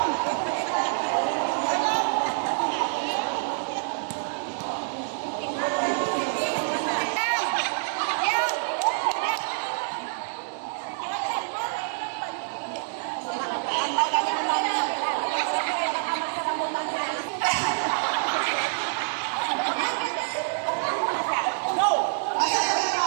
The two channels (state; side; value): silent; left; digital silence